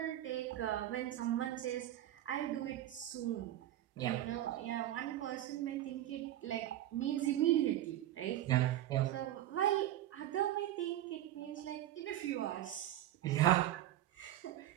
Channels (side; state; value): left; quieter; 13.1 dB